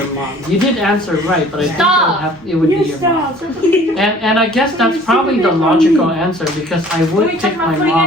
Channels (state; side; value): normal; both; correlation 0.51